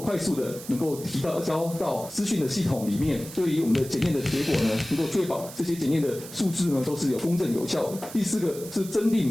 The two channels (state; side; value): noise; right; hiss, 14 dB below the sound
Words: 速的能夠交到資訊的系統裡面，對於我們的檢驗的結果呢，能夠確保這些檢驗的數字呢都是有公正有效的。第4個是增